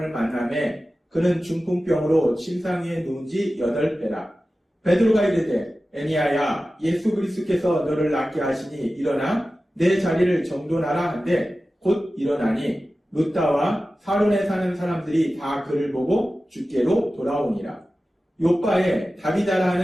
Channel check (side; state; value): both; normal; correlation 0.95